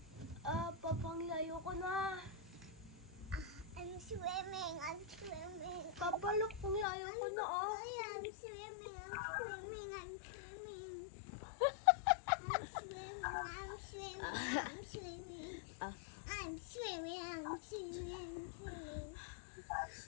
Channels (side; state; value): right; drops out; at 6.9 s